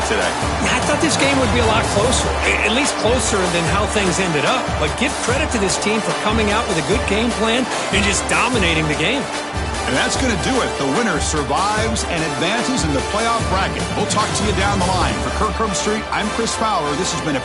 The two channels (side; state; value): both; identical; correlation 1.00